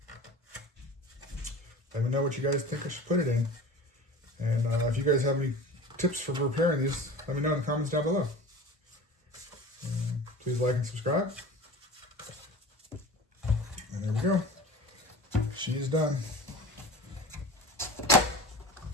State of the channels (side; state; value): both; normal; correlation 0.37